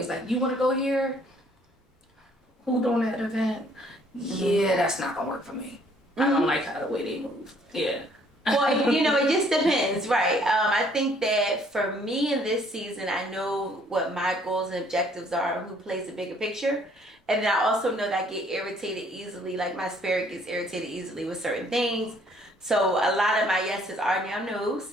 like, you want to go here? Who doing that event? Yeah, that's not gonna work for me. I don't like how the way they move. Well, it just depends, right? I think that for me in this season, I know what my goals and objectives are, who plays the bigger picture. And then I also know that I get irritated easily, like my spirit gets irritated easily with certain things. So a lot of my yeses are now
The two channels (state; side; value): normal; both; correlation 0.62